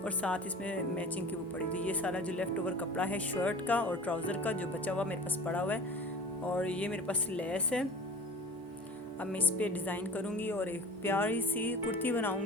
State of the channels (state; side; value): normal; both; correlation 0.39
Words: और साथ इसमें मैचिंग की वो पड़ी। तो ये सारा जो लेफ़्ट ओवर कपड़ा है शर्ट का और ट्राउज़र का जो बचा हुआ मेरे पास पड़ा हुआ है, और ये मेरे पास लेस है। अब मैं इस पर डिज़ाइन करूँगी और एक प्यारी सी कुर्ती